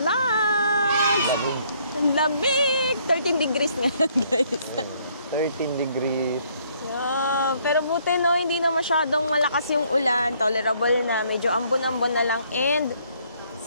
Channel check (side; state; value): both; inverted; correlation -0.66